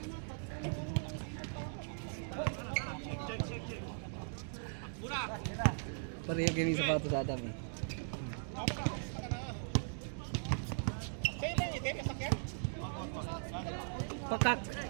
Pareho kami sapatos sa Adam eh. Pakak.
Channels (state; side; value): silent; left; digital silence